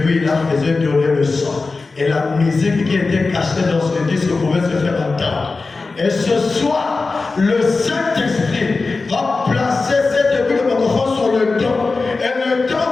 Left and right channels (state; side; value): quieter; right; 3.9 dB